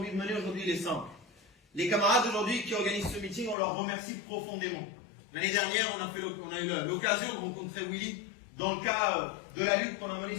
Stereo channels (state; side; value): drops out; right; at 3.6 s